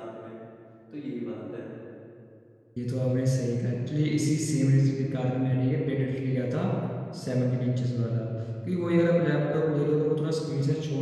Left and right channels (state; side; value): identical; both; correlation 1.00